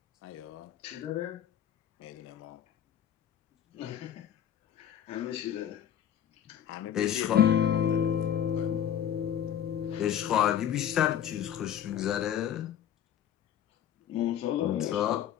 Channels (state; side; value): quieter; right; 9.9 dB